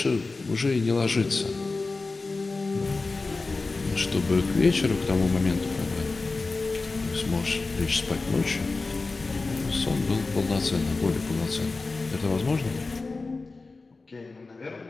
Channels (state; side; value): quieter; right; 3.7 dB